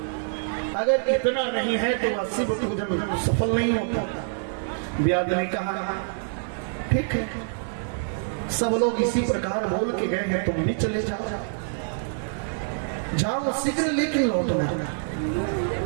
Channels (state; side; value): silent; left; digital silence